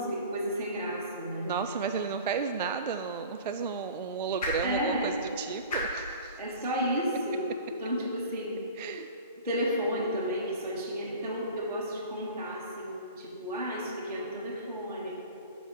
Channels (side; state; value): both; inverted; correlation -0.39